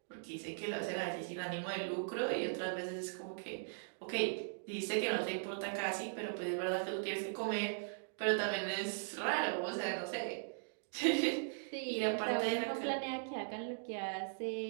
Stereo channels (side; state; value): left; silent; digital silence